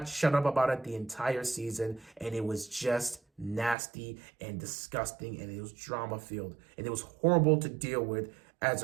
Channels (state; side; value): drops out; left; at 3.8 s